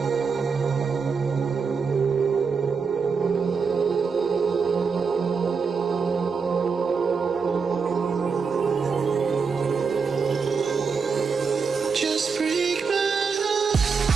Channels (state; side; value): quieter; left; 5.4 dB